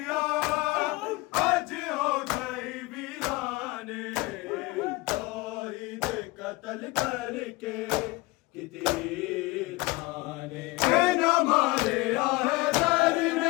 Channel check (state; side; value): quieter; right; 22.2 dB